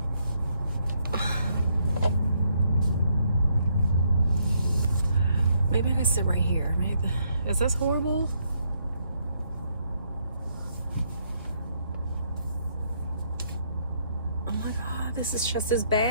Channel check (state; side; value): inverted; both; correlation -0.72